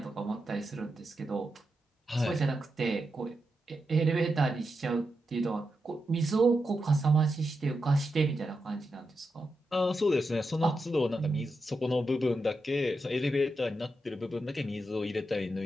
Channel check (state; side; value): normal; both; correlation 0.87